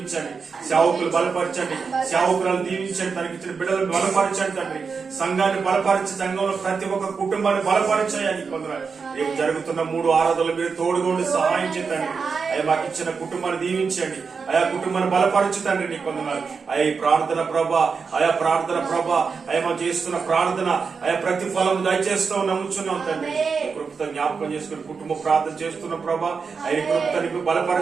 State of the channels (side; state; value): left; quieter; 5.3 dB